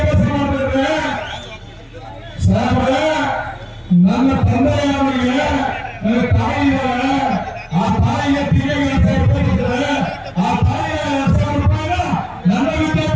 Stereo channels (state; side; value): identical; both; correlation 1.00